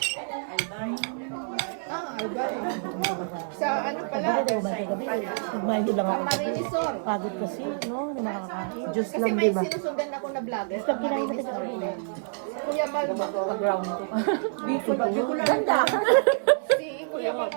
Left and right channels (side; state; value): left; silent; 58 dB below the other